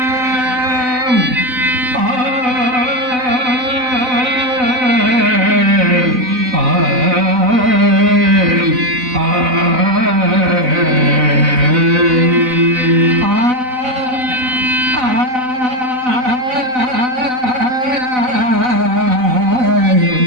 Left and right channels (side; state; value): left; late; 4.0 ms